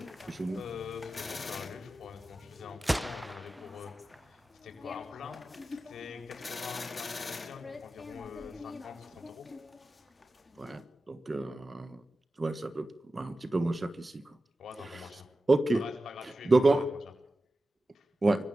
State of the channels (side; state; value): both; normal; correlation 0.93